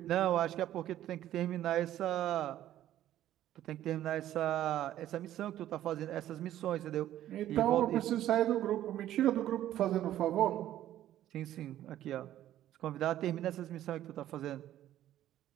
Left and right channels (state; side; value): quieter; left; 12.7 dB